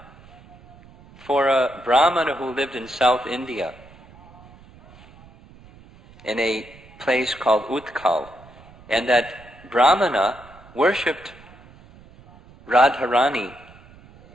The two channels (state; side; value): noise; right; rumble, 23 dB below the sound